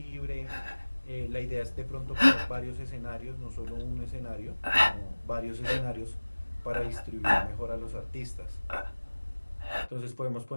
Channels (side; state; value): both; inverted; correlation -1.00